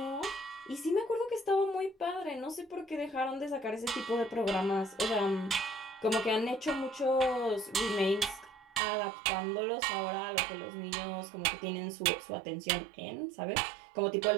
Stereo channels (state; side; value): drops out; left; at 8.8 s